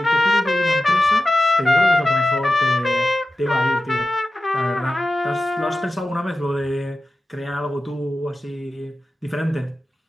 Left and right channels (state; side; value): normal; both; correlation 0.93